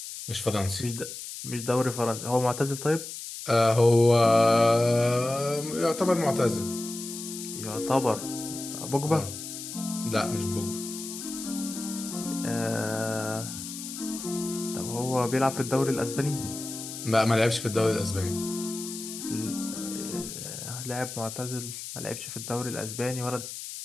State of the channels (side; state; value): left; noise; hiss, 9 dB below the sound